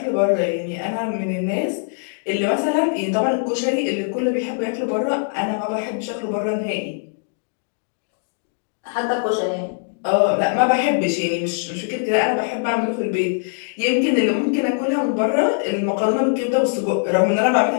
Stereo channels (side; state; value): right; silent; digital silence